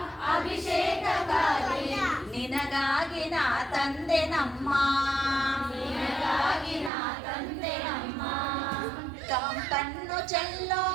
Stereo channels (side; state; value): left; drops out; at 6.9 s